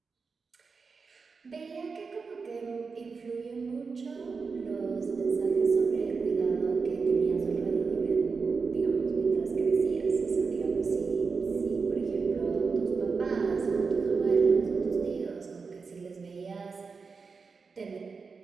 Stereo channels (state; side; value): quieter; left; 4.9 dB